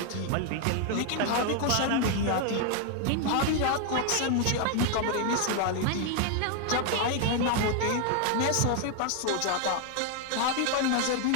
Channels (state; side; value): different; both; correlation 0.00